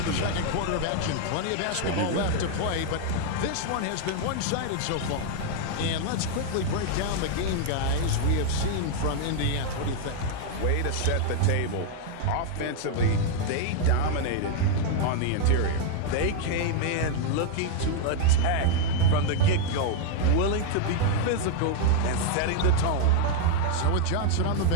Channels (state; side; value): different; both; correlation 0.00